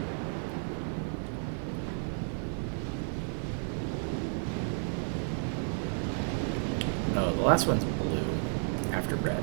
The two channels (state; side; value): silent; left; 56 dB below the other